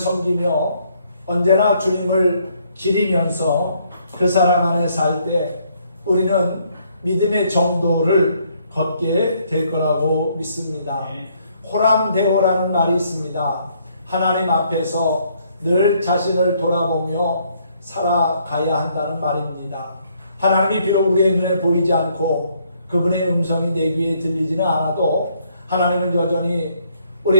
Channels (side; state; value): both; inverted; correlation -0.68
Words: 언제나 주님을 기리면서 그 사랑 안에 살 때 우리는 믿음의 정도를 걷게 될 거라고 믿습니다. 호람대오라는 말이 있습니다. 하나님 앞에서 늘 자신을 돌아보며 살아가야 한다는 말입니다. 하나님이 비록 우리의 눈에 보이지 않고 그분의 음성이 내 귀에 들리지는 않아도 하나님은 여전히